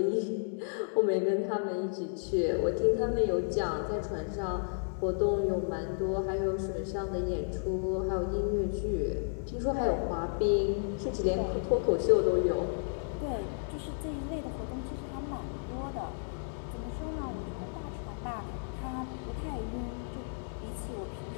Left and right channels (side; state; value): right; silent; digital silence